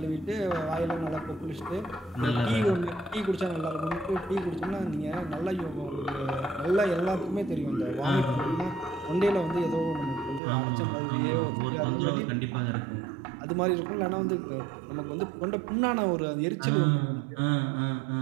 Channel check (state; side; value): drops out; left; at 10.4 s